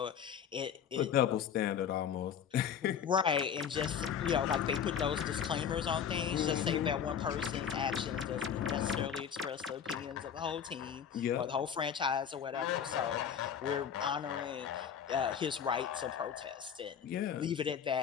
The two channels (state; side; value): quieter; right; 8.1 dB